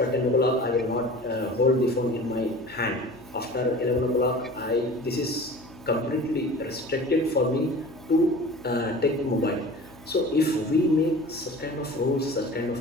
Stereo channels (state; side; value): noise; left; hum, 22 dB below the sound